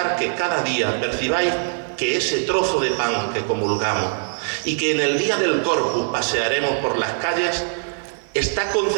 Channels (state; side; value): silent; left; digital silence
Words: que cada día percibáis que ese trozo de pan que comulgamos y que en el día del Corpus pasearemos por las calles, está